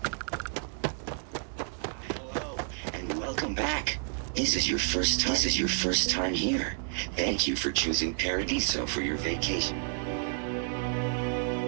Welcome back. This is your first time here. Thank you for choosing Paradiso for your vacation.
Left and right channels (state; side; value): silent; left; 58 dB below the other